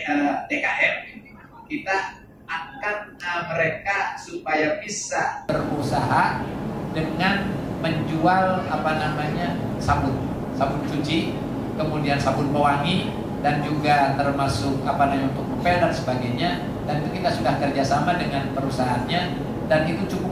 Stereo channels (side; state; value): both; identical; correlation 1.00